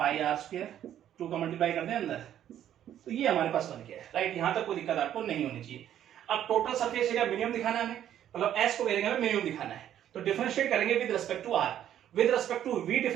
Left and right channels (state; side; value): quieter; left; 10.9 dB